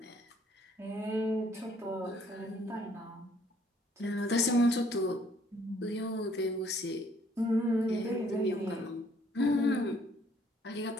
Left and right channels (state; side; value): normal; both; correlation 0.63